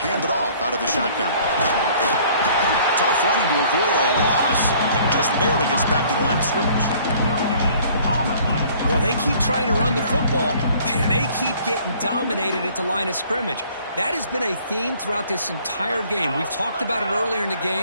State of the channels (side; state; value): both; inverted; correlation -0.55